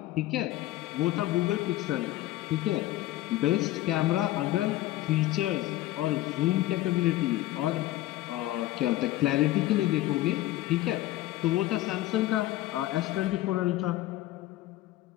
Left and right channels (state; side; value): quieter; right; 15.9 dB